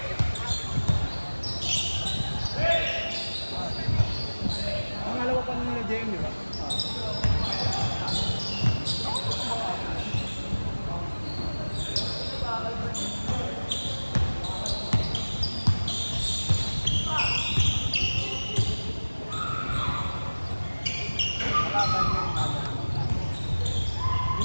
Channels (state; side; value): inverted; both; correlation -1.00